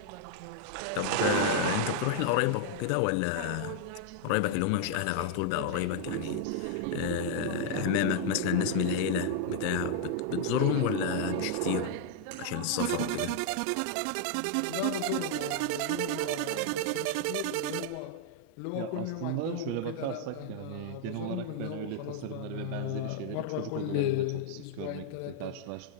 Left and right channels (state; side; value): different; both; correlation 0.00